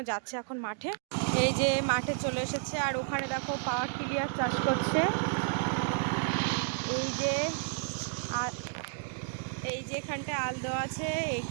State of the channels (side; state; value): left; silent; digital silence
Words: যাচ্ছে এখন মাঠে। এই যে মাঠে চলে এসেছে, আর ওখানে দেখো পাওয়ার টিলার চাষ করছে। এই যে এখানটায় আল দেওয়া আছে,